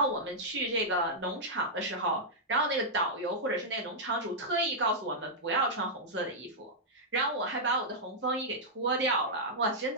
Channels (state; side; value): normal; both; correlation -0.09